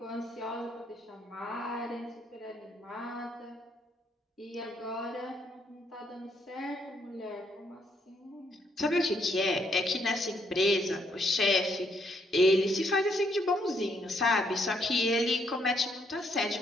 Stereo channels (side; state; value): both; normal; correlation 0.73